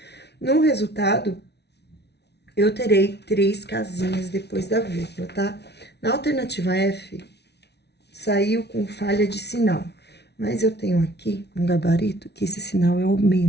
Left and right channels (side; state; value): right; late; 0.49 ms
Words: no resultado, eu terei 3 casinhas depois da vírgula, tá? Na alternativa F, saiu com falha de sinal. Mas eu tenho aqui um gabarito que esse sinal é o